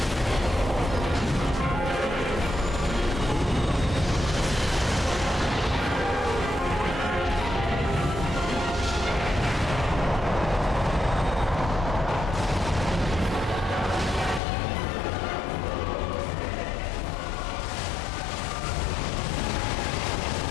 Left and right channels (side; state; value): right; drops out; at 14.4 s